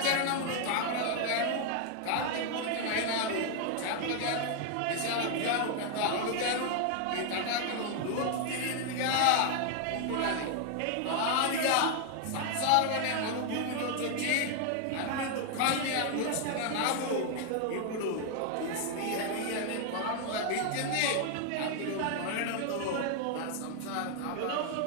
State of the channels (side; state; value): both; different; correlation 0.00